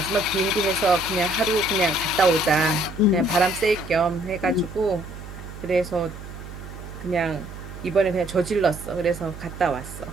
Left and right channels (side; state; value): right; noise; hum, 13 dB below the sound